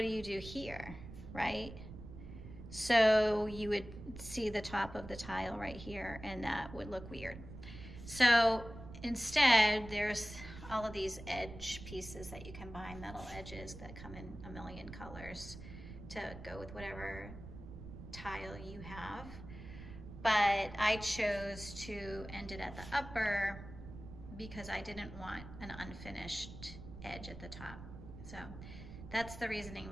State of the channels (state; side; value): noise; right; rumble, 13 dB below the sound